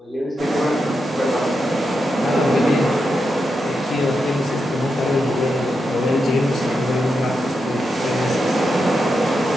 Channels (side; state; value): both; normal; correlation 0.86